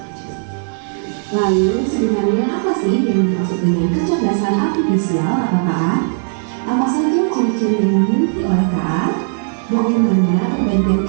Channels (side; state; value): left; silent; 57 dB below the other